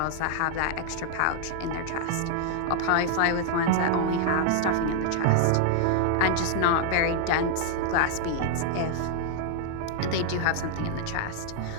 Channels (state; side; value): different; both; correlation 0.00